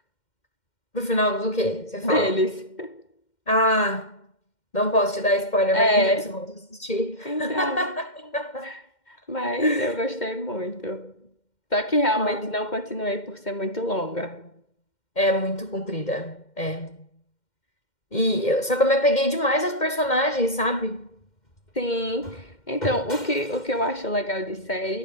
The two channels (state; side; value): late; right; 2.1 ms